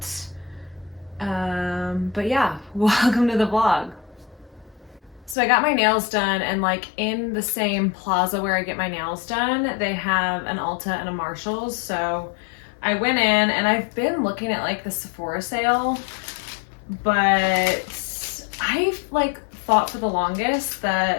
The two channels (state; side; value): drops out; right; at 5.4 s